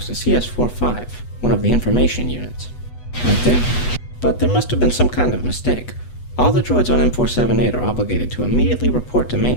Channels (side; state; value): right; late; 8.2 ms